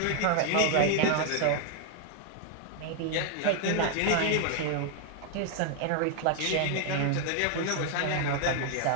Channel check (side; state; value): both; different; correlation 0.00